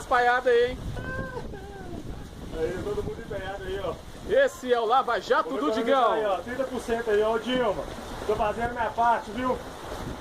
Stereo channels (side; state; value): both; identical; correlation 1.00